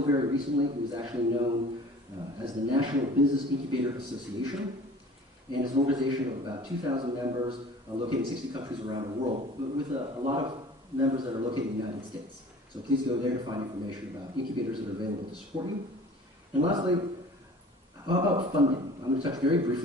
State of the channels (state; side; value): normal; both; correlation 0.45